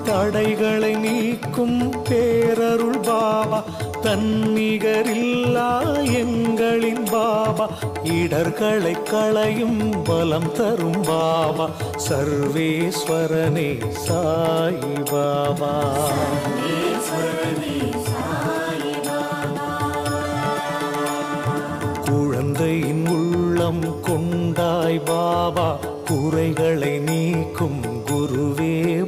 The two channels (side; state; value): both; identical; correlation 1.00